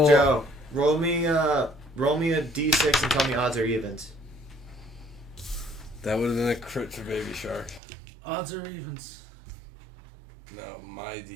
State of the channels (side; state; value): left; drops out; at 7.8 s